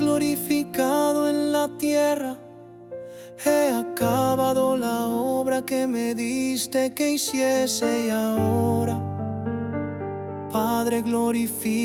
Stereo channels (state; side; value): identical; both; correlation 1.00